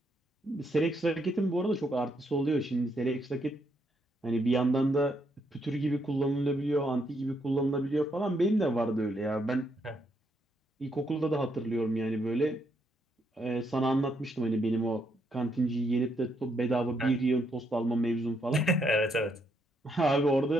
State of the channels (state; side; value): normal; both; correlation 0.76